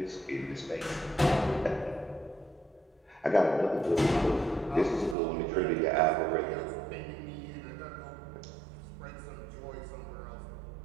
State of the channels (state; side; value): drops out; left; at 5.2 s